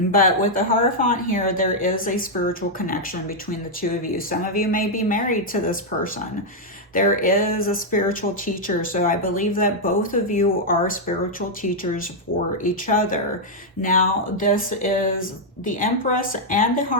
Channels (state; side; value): normal; both; correlation -0.03